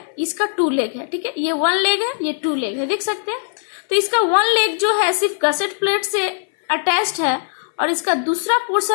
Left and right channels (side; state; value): right; silent; 61 dB below the other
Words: इसका 2 लेग है। ठीक है, ये 1 लेग है, ये 2 लेग है, देख सकते हैं। तो इसका 1 लेग जो है सिर्फ गसेट प्लेट से अटैच्ड है और इसका दूसरा